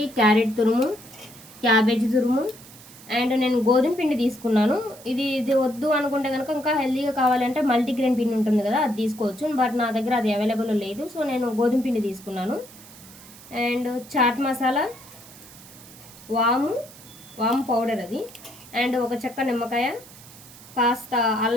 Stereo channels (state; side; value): noise; right; hiss, 20 dB below the sound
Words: క్యారెట్ తురుము, క్యాబేజీ తురుము, అండ్ నేను గోధుమ పిండి తీసుకున్నాను. ఇది వద్దు అనుకుంటే కనుక ఇంకా హెల్తీగా కావాలంటే మల్టీగ్రెయిన్ పిండి ఉంటుంది కదా, అది తీసుకోవచ్చు. బట్ నా దగ్గర అది అవైలబుల్ లేదు, సో నేను గోధుమ పిండి తీసుకున్నాను. అండ్ చాట్ మసాలా, వాము పౌడర్ అది, అండ్ ఒక చెక్క నిమ్మకాయ, కాస్త